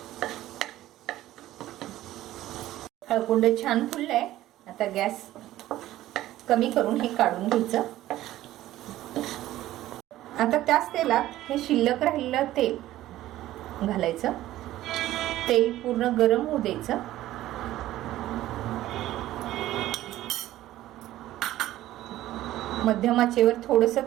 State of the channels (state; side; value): quieter; left; 14.7 dB